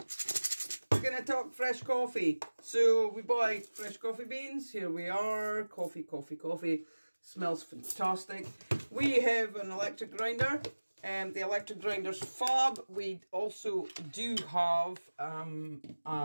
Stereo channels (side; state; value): both; inverted; correlation -1.00